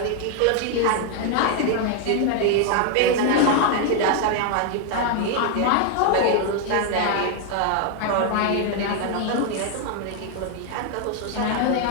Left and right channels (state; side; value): different; both; correlation 0.00